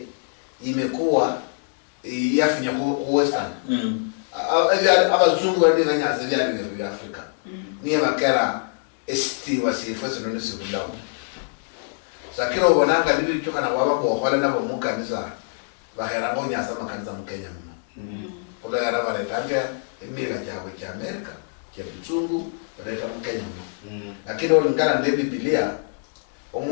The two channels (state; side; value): silent; right; digital silence